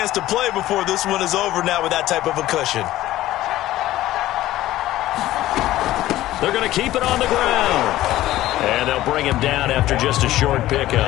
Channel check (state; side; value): quieter; right; 15.2 dB